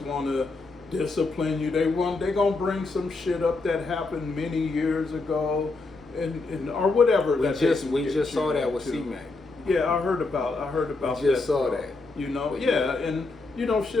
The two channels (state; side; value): quieter; right; 3.5 dB